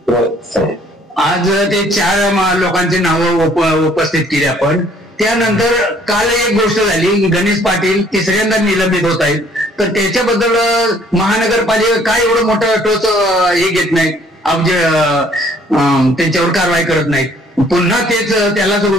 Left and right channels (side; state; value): both; normal; correlation 0.60